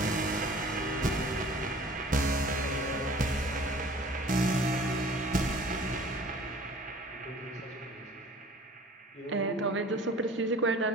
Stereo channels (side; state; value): both; normal; correlation 0.47